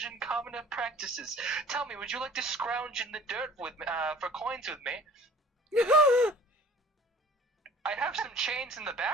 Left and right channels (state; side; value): normal; both; correlation 0.48